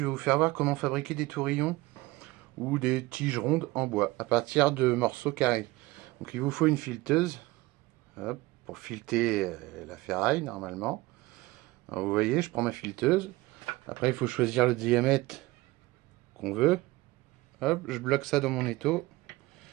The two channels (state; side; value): quieter; left; 20.3 dB